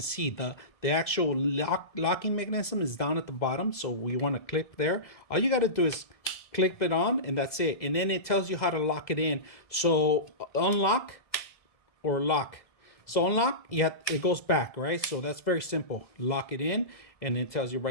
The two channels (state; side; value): late; right; 1.7 ms